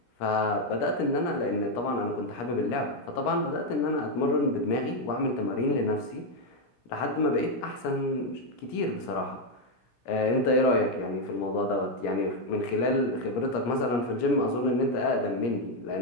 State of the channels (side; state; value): right; late; 17 ms